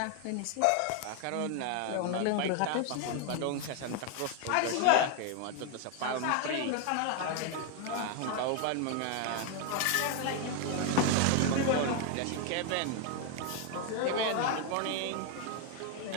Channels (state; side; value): different; both; correlation 0.01